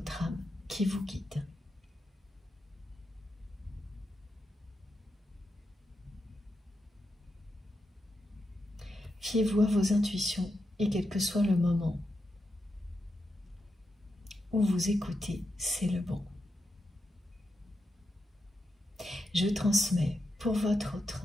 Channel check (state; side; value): normal; both; correlation 0.86